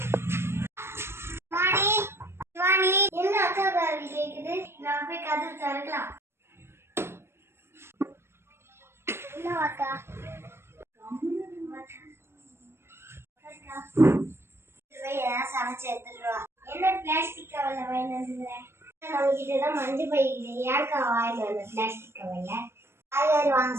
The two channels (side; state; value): left; late; 0.12 ms